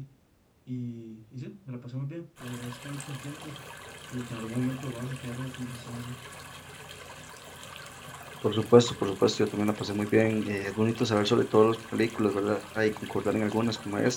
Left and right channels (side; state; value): both; identical; correlation 1.00